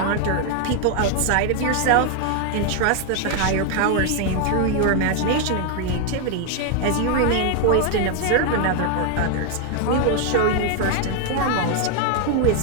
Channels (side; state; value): both; different; correlation 0.00